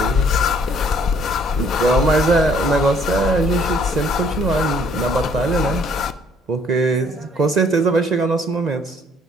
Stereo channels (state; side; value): normal; both; correlation 0.62